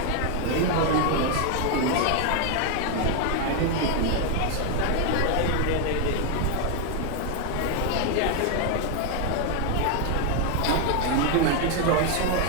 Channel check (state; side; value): different; both; correlation 0.01